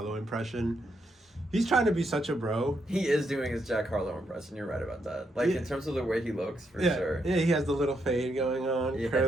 impression. He's trying to be such a bro. He is doing his Jack Harlow impression. You're right about that. Like, in terms of the way he looks, for sure. Yeah, he has the little fade going on,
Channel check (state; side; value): normal; both; correlation 0.79